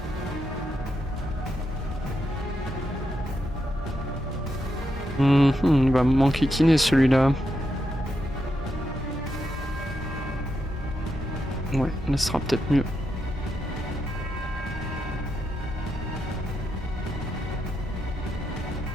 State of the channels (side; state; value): both; normal; correlation 0.84